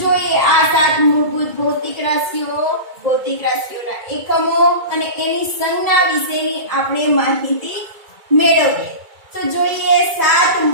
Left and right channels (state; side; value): late; left; 2.3 ms